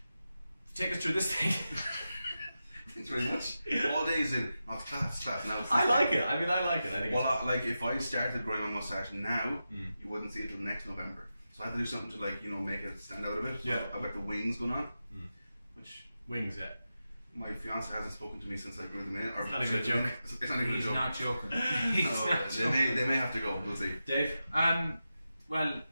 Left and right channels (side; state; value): both; inverted; correlation -0.91